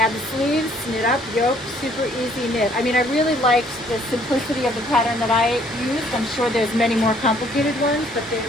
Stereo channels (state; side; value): normal; both; correlation 0.62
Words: the sleeves, knit up, yoke, super easy knit. I mean, I really liked the simplicity of the pattern that I used. I'm sure there's many more complicated ones, but the